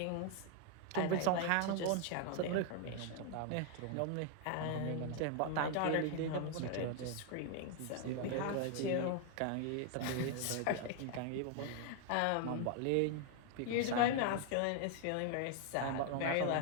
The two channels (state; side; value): different; both; correlation 0.00